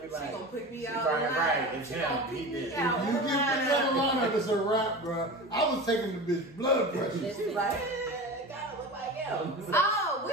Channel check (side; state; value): both; normal; correlation 0.31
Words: like, she gonna pick me out. Right, it's him. He did. You get picked out of line, it's a wrap, bro. I was taking the bitch blood pressure. She's like, it gotta look like him. Oh,